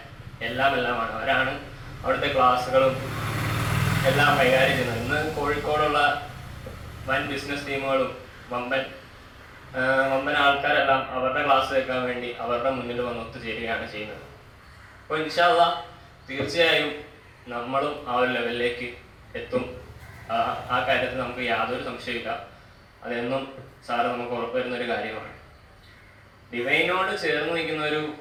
എല്ലാമാണ്. അവരാണ് അവിടുത്തെ ക്ലാസ്സുകളും എല്ലാം കൈകാര്യം ചെയ്യുന്നത്. ഇന്ന് കോഴിക്കോടുള്ള വൻ ബിസിനസ് ടീമുകളും വമ്പൻ ആൾക്കാരെല്ലാം അവരുടെ ക്ലാസ് കേൾക്കാൻ വേണ്ടി അവരുടെ മുന്നിൽ വന്ന് ഒത്തുചേരുകയാണ് ചെയ്യുന്നത്. അപ്പോൾ ഇൻഷാ അല്ലാഹ് തീർച്ചയായും നമ്മളും ആ ഒരു ലെവലിലേക്ക് എത്തും. ആ കാര്യത്തിൽ നമുക്ക് യാതൊരു സംശയമില്ല. അതെന്നും സാറ് നമുക്ക് ഉറപ്പുവരുന്നൊരു കാര്യമാണ്. ഡിവൈനോട് ചേർന്ന് നിൽക്കുന്ന ഒരു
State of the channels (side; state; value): both; identical; correlation 1.00